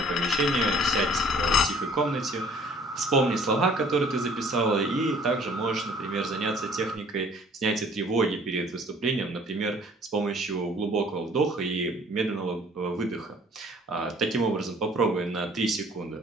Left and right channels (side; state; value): both; normal; correlation 0.55